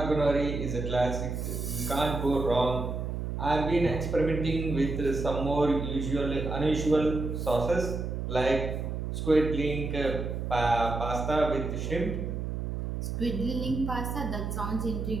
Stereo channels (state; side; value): noise; right; hum, 3 dB below the sound